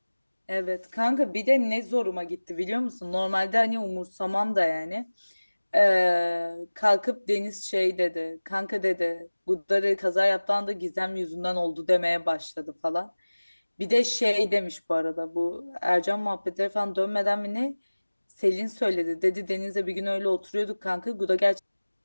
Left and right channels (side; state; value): both; inverted; correlation -1.00